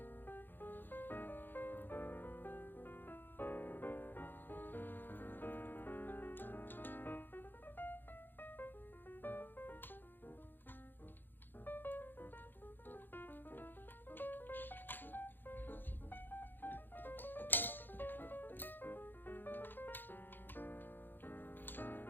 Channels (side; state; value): right; late; 0.094 ms